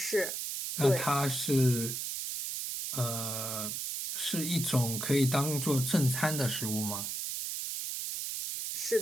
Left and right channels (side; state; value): right; noise; hiss, 4 dB below the sound